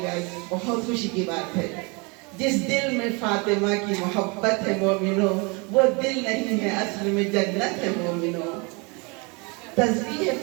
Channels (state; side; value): quieter; left; 29.9 dB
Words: बहुत खुशी की बात है। जिस दिल में फातिमा की मोहब्बत है मोमिनो, वो दिल नहीं है असल में जन्नत है मोमिनो। तस्बीह